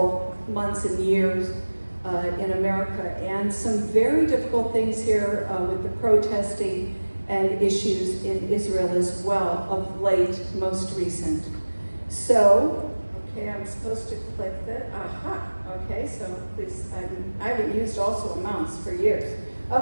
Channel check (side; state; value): both; inverted; correlation -1.00